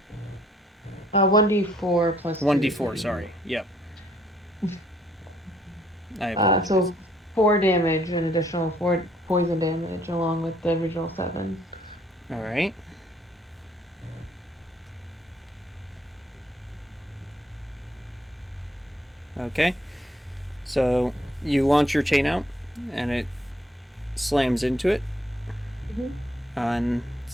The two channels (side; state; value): both; normal; correlation 0.66